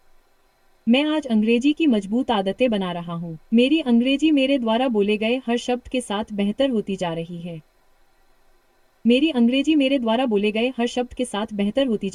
मैं आज अंग्रेजी की मजबूत आदतें बना रहा हूँ। मेरी अंग्रेजी मेरे द्वारा बोले गए हर शब्द के साथ बेहतर होती जा रही है। मेरी अंग्रेजी मेरे द्वारा बोले गए हर शब्द के साथ बेहतर होती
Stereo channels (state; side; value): identical; both; correlation 1.00